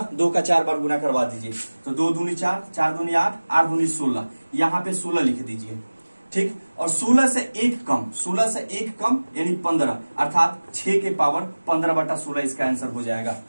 2 का 4 बार गुना करवा दीजिए, तो 2 दूनी 4, 4 दूनी 8, 8 दूनी 16, यहाँ पे 16 लिख दीजिए, ठीक। और 16 से 1 कम यानी 15, अर्थात 6 के पावर 15/16 इसका आंसर हो जाएगा।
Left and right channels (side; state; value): both; inverted; correlation -1.00